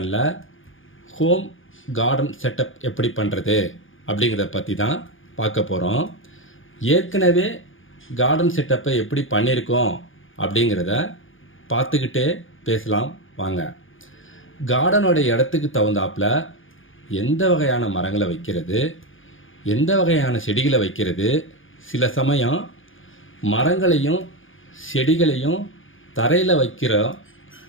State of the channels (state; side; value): late; right; 0.58 ms